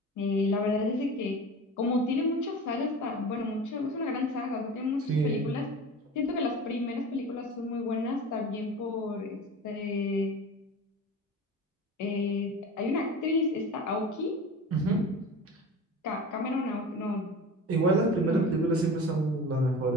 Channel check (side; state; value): both; normal; correlation 0.34